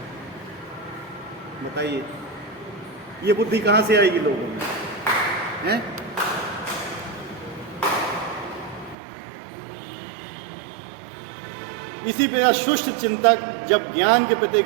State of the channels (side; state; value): left; drops out; at 9.0 s